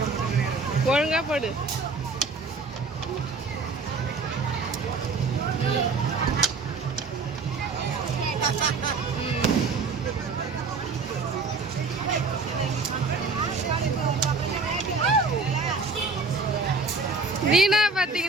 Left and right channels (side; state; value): left; quieter; 4.1 dB